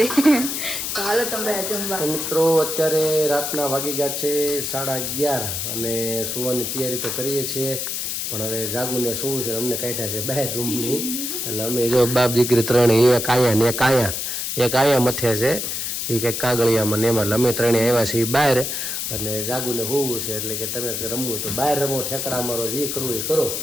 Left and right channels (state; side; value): noise; left; hiss, 3 dB below the sound